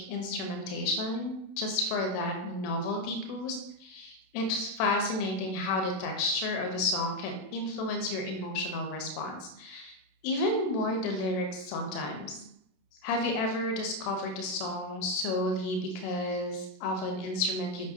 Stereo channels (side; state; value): right; late; 27 ms